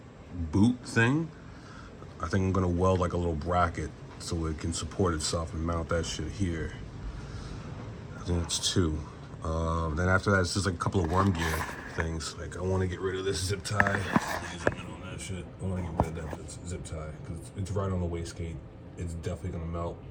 boot thing, I think I'm gonna weld like a little bracket so it can support itself and mount that shit here. I think that's 2. Then after that, it's just like a couple of worm gear things. Like I want to get rid of this zip tie. On that shit, I want to get rid of that zip tie because it's right on the wastegate. It's definitely gonna melt.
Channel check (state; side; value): identical; both; correlation 1.00